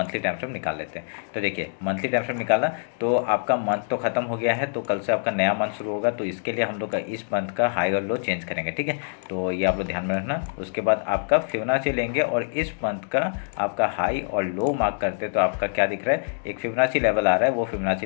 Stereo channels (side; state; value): right; silent; digital silence